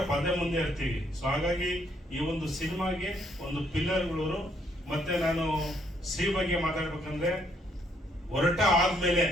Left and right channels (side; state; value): both; normal; correlation 0.70